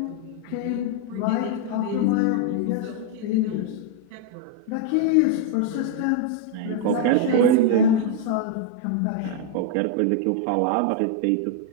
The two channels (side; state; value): both; different; correlation 0.00